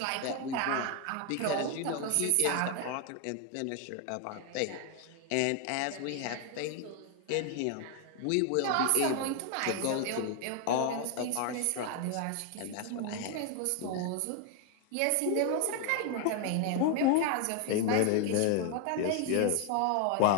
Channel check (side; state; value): both; different; correlation 0.01